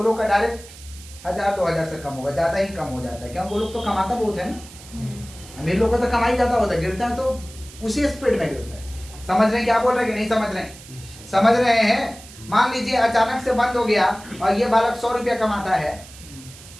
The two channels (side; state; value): right; noise; hiss, 18 dB below the sound